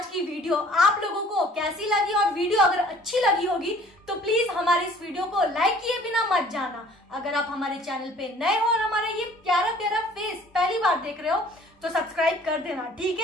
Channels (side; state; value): both; normal; correlation 0.53